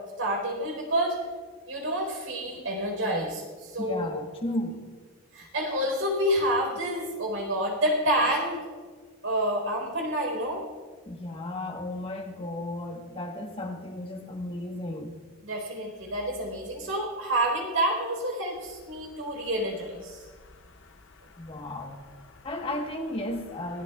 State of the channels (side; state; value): both; normal; correlation -0.07